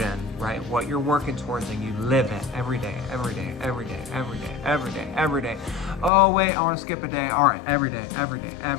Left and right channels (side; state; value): right; drops out; at 6.1 s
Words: right, what you're working towards, and you live it every day, every day, every day, every day, every day, every day. Oh, wait, I want to skip a day. All right, every day, every day,